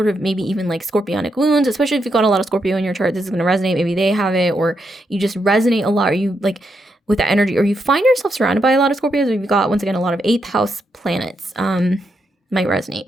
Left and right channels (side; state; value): both; normal; correlation 0.81